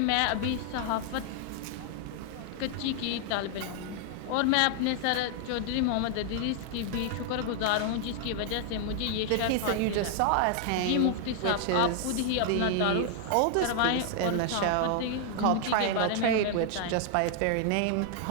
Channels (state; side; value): different; both; correlation 0.00